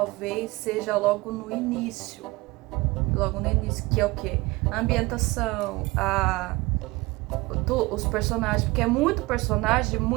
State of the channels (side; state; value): left; quieter; 22.3 dB